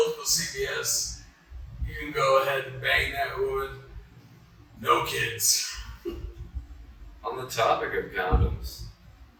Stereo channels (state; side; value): identical; both; correlation 1.00